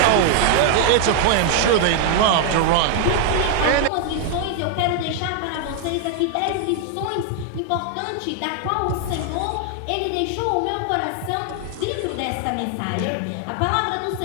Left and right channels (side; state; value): both; different; correlation 0.00